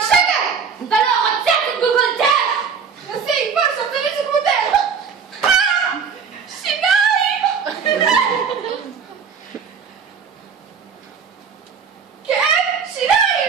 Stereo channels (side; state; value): left; quieter; 6.2 dB